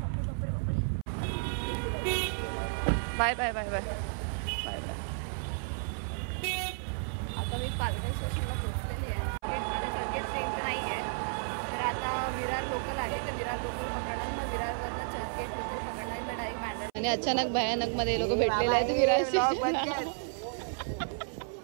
Bye bye bye bye bye bye. आता मी पालघर स्टेशनला पोहोचलेली आहे. ट्रेन तर नाही आहे तर आता विरार लोकल आहे. तर विरार लोकल पकडणार. मग विरारवरनं चर्चगेट लोकल पकडणार. मी डायरेक्ट बँड्रा. आणि अचानक भयानक मध्ये लोक भेटलेले आहेत विरार स्टेशनला.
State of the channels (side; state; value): left; silent; 56 dB below the other